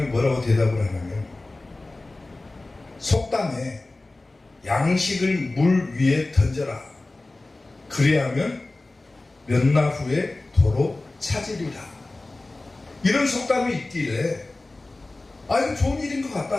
뭐라고 대답을 하냐면, 속담에 양식을 물 위에 던져라. 그래야면 몇 날 후에 도로 찾으리라. 이런 속담이 있길래, 이거 좋은 일인 것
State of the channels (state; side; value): quieter; right; 3.0 dB